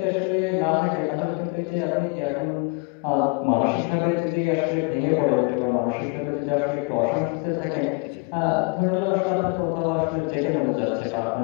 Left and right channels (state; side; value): quieter; right; 30.8 dB